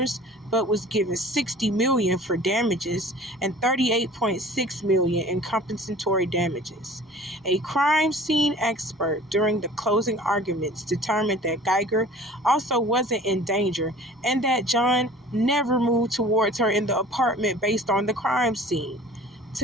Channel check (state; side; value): normal; both; correlation 0.46